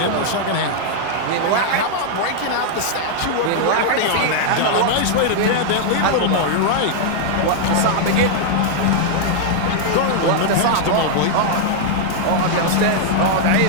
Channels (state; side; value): different; both; correlation -0.01